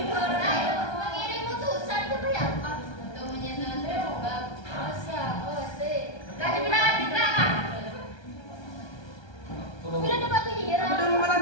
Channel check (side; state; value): right; late; 1.3 ms